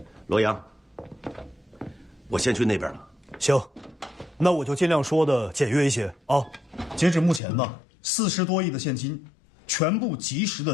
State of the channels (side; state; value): right; drops out; at 7.4 s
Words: 罗阳，我先去那边了，行，那我就尽量说的简约一些啊。截止目前呢，40多亿的现金，全部及时